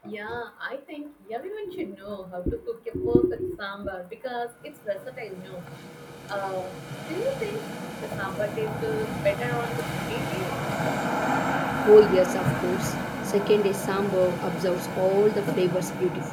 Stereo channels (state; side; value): identical; both; correlation 1.00